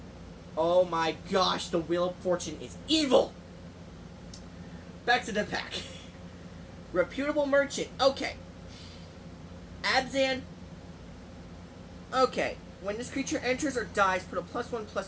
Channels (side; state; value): both; identical; correlation 1.00